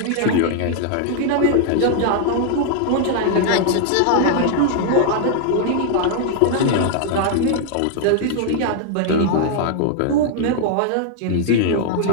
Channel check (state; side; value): different; both; correlation 0.00